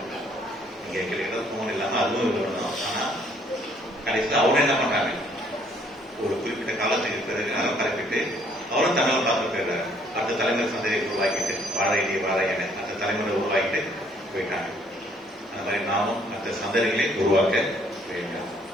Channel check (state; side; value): normal; both; correlation 0.63